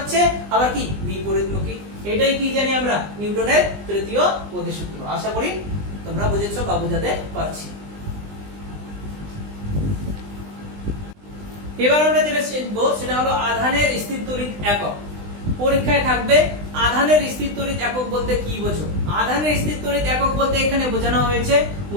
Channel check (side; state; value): left; late; 20 ms